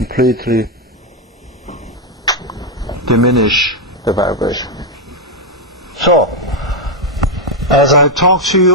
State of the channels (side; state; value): both; normal; correlation 0.02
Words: diminish the vibration. So, as I talked to